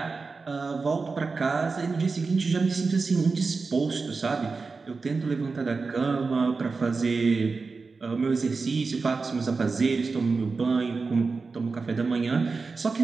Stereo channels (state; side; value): quieter; left; 4.3 dB